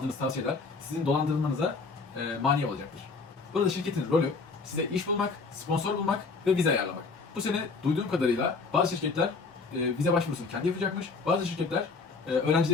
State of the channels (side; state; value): right; quieter; 4.3 dB